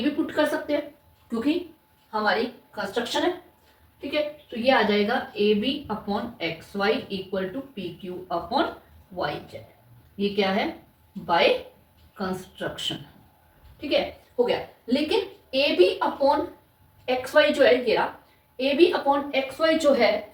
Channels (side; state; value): both; identical; correlation 1.00